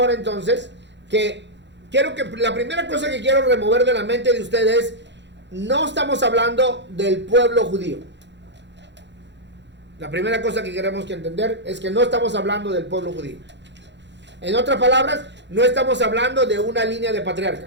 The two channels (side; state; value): left; late; 0.52 ms